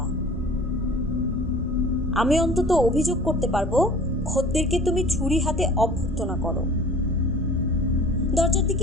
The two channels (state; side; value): normal; both; correlation 0.45